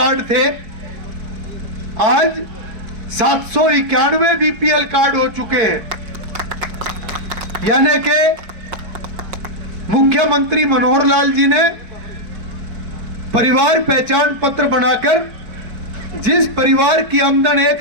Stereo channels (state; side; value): late; left; 4.5 ms